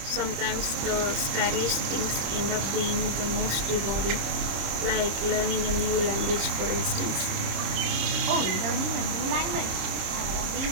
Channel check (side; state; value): left; late; 26 ms